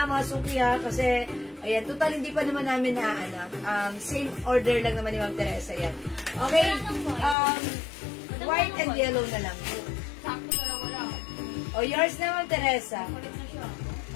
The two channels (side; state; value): right; drops out; at 7.4 s